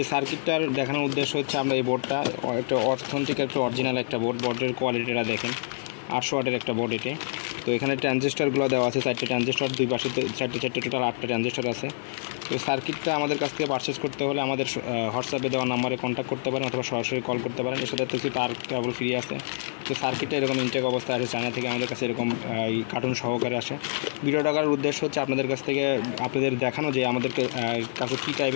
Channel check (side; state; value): right; silent; digital silence